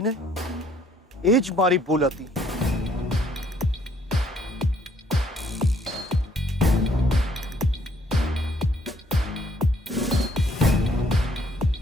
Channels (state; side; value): normal; both; correlation 0.64